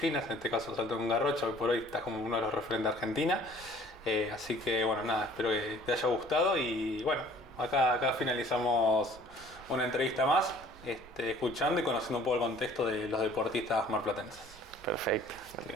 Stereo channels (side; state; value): right; noise; rumble, 21 dB below the sound